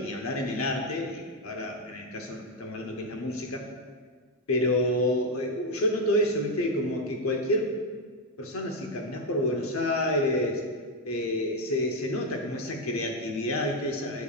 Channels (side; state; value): both; normal; correlation 0.06